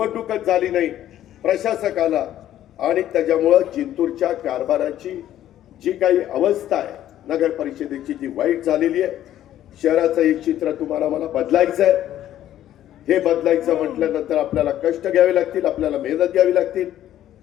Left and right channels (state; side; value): quieter; right; 12.2 dB